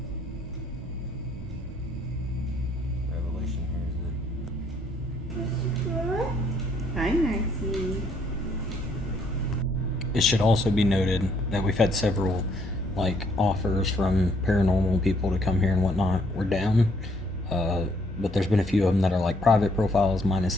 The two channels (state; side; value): normal; both; correlation 0.67